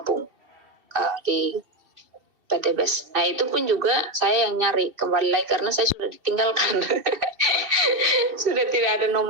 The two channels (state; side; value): late; left; 2.7 ms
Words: di PTBS. Nah itu pun juga saya yang nyari kembali lagi karena saya sudah ditinggalkan. Sudah tidak ada